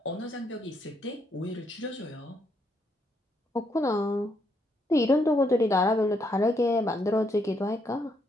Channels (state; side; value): normal; both; correlation 0.75